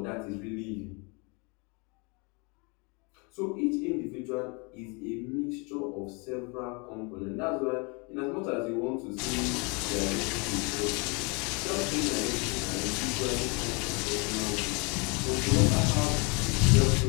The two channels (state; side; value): quieter; right; 31.4 dB